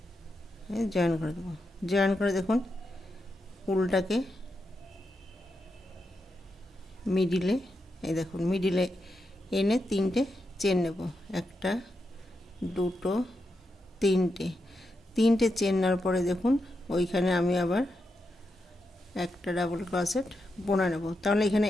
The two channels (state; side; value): normal; both; correlation 0.86